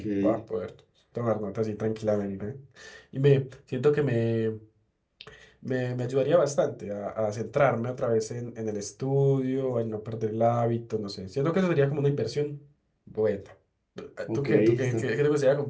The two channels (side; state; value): both; identical; correlation 1.00